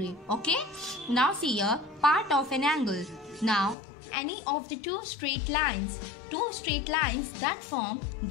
Okay. Now see here part of an angle. Now any of the two straight lines that form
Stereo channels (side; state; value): right; drops out; at 3.8 s